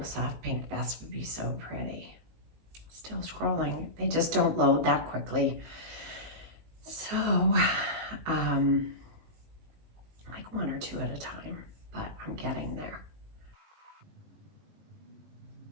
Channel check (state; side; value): late; left; 19 ms